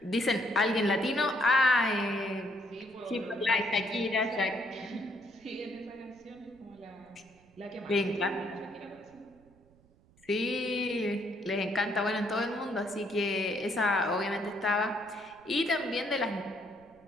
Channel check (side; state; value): right; noise; rumble, 29 dB below the sound